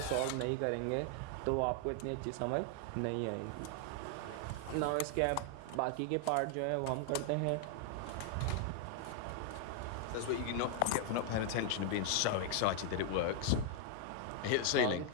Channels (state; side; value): different; both; correlation 0.00